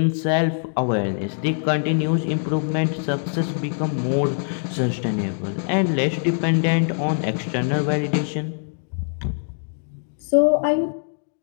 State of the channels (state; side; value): silent; right; digital silence